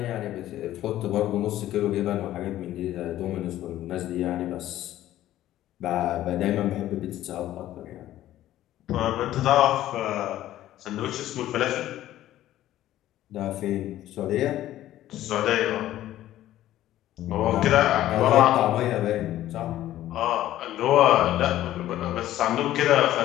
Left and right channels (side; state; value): right; quieter; 13.7 dB